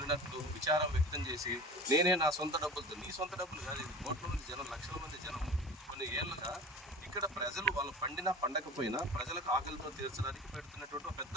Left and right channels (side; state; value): both; normal; correlation 0.36